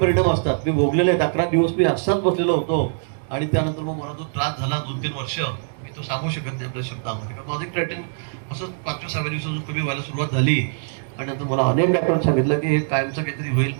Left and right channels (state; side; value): silent; left; digital silence